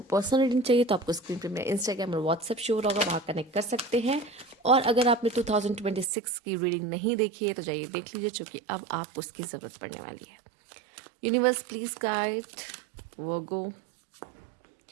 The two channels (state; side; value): drops out; left; at 6.1 s